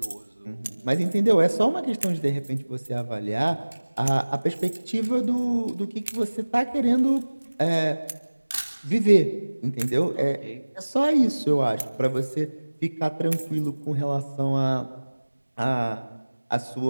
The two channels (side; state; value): both; inverted; correlation -1.00